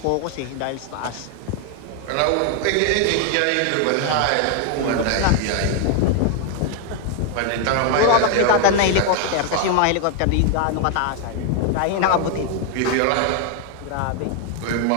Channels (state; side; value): different; both; correlation 0.00